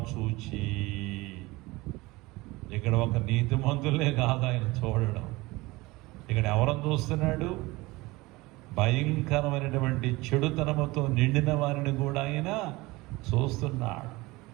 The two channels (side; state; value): left; quieter; 21.6 dB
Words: చూచి. ఇక్కడ ఒక నీతిమంతులే కాదు ఆయన చూడడం, ఇక్కడ ఎవరని చూస్తున్నాడు? భయంకరమైనటువంటి చెడుతనముతో నిండిన వారిని కూడా ఆయన చూస్తున్నాడు.